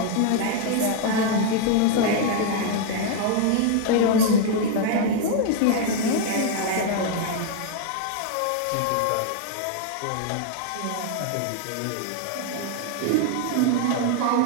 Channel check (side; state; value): both; different; correlation 0.00